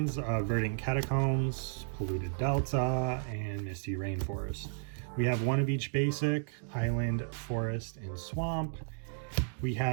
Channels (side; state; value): left; silent; digital silence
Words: Verdant Catacombs, Polluted Delta, and Misty Rainforest. We have 1 of each basic, Island, Forest, and Swamp. We